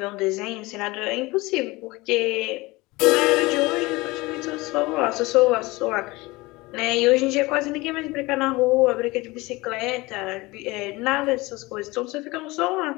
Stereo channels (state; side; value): quieter; right; 22.1 dB